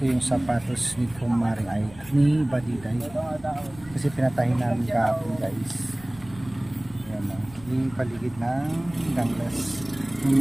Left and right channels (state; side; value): noise; left; rumble, 20 dB below the sound